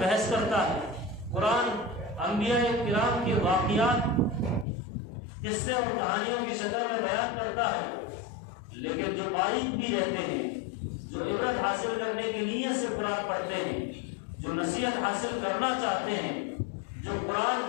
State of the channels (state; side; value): drops out; right; at 4.7 s